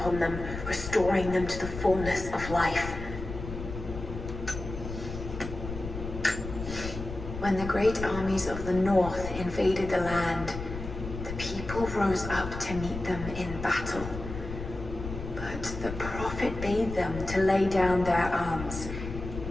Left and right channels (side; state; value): left; noise; rumble, 8 dB below the sound